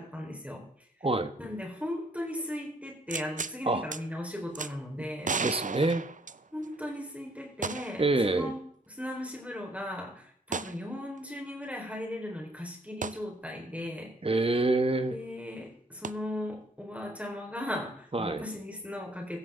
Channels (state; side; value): normal; both; correlation 0.64